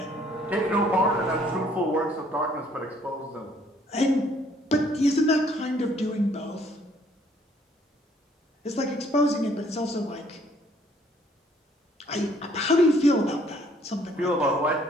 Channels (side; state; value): both; normal; correlation 0.62